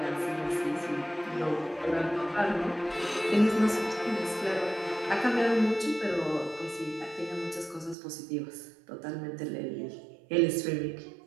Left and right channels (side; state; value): left; drops out; at 8.0 s